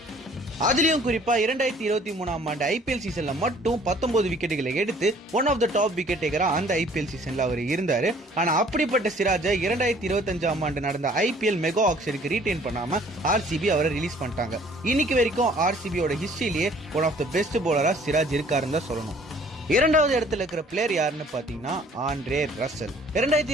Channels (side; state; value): both; normal; correlation 0.56